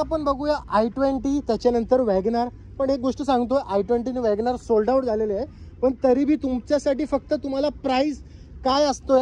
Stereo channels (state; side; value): identical; both; correlation 1.00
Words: बघूया i20, त्याच्यानंतर वॅगनार. पण एक गोष्ट सांगतो, i20 आणि वॅगनार सोल्ड आउट झालेले आहे, पण तरी बी तुमच्यासाठी फक्त तुम्हाला प्राइस काय असतो